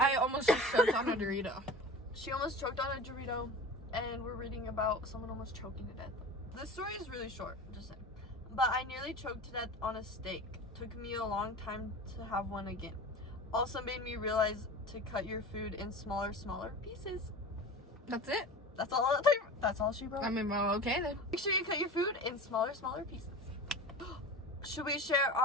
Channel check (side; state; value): both; normal; correlation 0.34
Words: almost just choked on a Dorito. She almost choked on a Dorito, and we're reading about someone almost choking to death. This story is really short, just saying. But I nearly choked to death on a steak. Took me a long time to have one again. Also made me realize to cut your food in smaller pieces. That's it. That's all she wrote. I mean, well, okay then. Make sure you cut your food in smaller pieces. Should we share